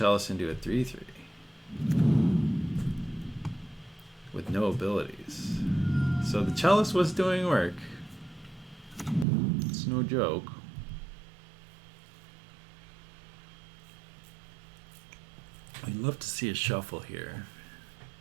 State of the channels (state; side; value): drops out; left; at 9.2 s